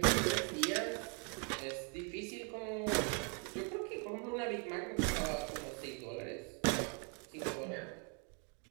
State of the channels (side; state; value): left; quieter; 38.4 dB